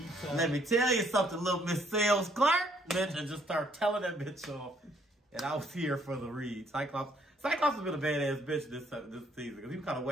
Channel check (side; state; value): both; normal; correlation 0.67